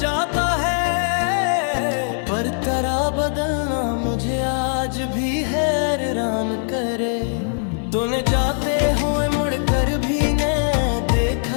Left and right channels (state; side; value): silent; right; digital silence